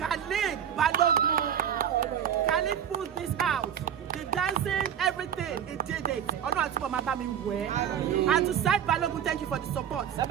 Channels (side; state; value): left; quieter; 9.1 dB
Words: Balogun. Khalid pulled this out. The dancing, everything, he did it. And to Saheed Balogun, thank you for the support.